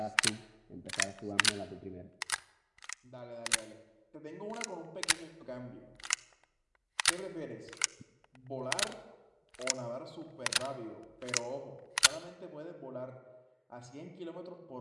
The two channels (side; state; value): both; identical; correlation 1.00